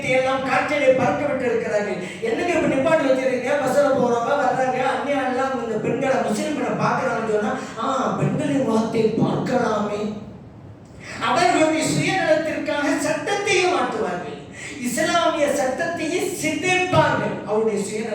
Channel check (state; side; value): identical; both; correlation 1.00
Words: எல்லாம் காற்றிலே பறக்க விட்டு இருக்கிறார்கள். என்னங்க இப்ப நிப்பாட்டி வச்சிருக்கீங்க? பஸ்ல போறவங்க வர்றாங்க, அந்நியா எல்லாம் இந்த பெண்களை முஸ்லிம்களை பார்க்கறாங்கன்னு சொன்னா, பெண்களின் முகத்தை பார்க்கலாமே. அவர்களுடைய சுயநலத்திற்காக சட்டத்தையும் மாற்றுவார்கள், இஸ்லாமிய சட்டத்தையே சிதைப்பார்கள் அவருடைய